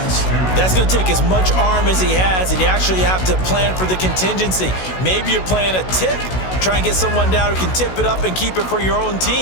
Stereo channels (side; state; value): right; late; 16 ms